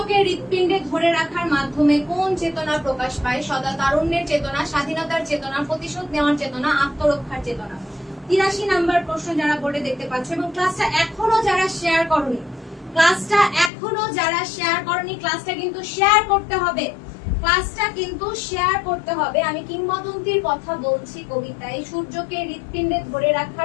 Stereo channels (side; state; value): right; drops out; at 13.7 s